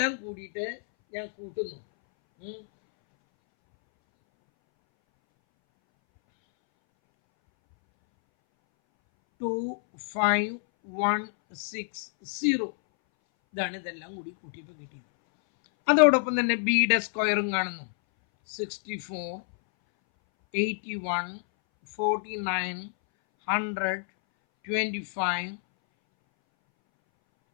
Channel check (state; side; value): silent; right; 59 dB below the other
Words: കൂടിയിട്ട് ഞാൻ കൂട്ടുന്നു. 25,160. ഇതാണ് ഇതെല്ലാം കൂടി കൂട്ടിയപ്പോൾ കിട്ടിയത്. അതോടൊപ്പം തന്നെ ബിയുടെ സ്ക്വയറും കാണുന്നു. 64, 81, 49, 100, 25,